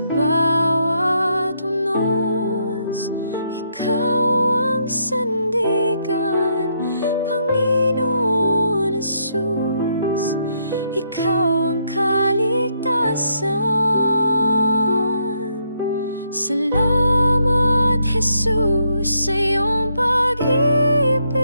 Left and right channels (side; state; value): both; inverted; correlation -0.75